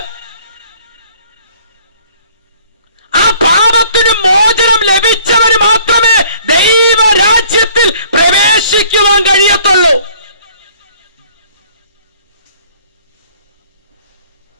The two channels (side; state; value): both; inverted; correlation -0.57